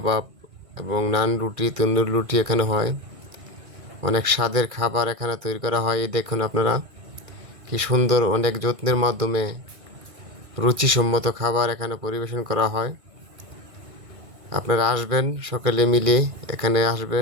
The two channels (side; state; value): left; late; 1.6 ms